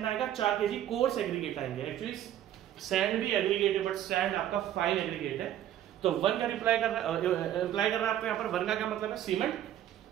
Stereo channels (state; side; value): quieter; left; 11.8 dB